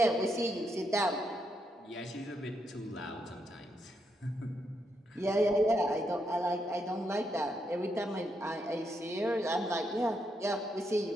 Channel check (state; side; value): normal; both; correlation 0.80